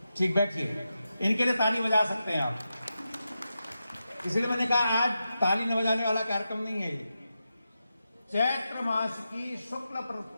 ठीक, बैठिए। इनके लिए ताली बजा सकते हैं आप। इसलिए मैंने कहा आज ताली न बजाने वाला कार्यक्रम नहीं है ये। चैत्र मास की शुक्ल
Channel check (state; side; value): inverted; both; correlation -0.89